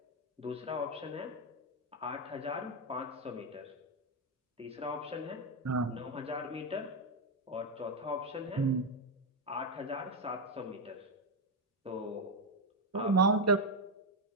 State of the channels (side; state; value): both; normal; correlation 0.05